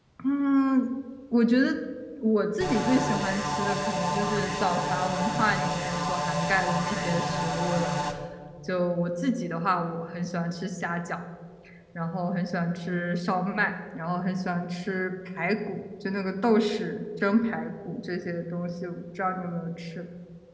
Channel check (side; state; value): both; identical; correlation 1.00